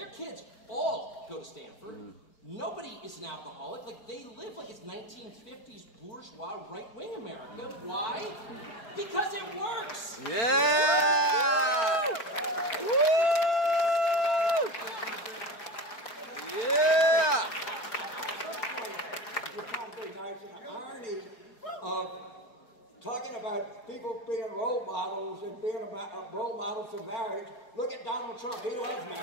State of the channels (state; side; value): late; right; 4.4 ms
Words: kids all go to Stanford. Nobody is an alcoholic. Like, they live like it's 1950s bourgeois right-wing America. Why? Because it works. Yeah! Woo! Yeah! You're trying to be nice, and the irony of talking about people being role models and being role models for marriage. Look at Donald Trump. He loves